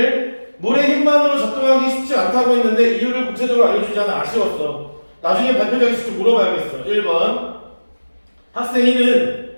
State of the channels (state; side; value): inverted; both; correlation -1.00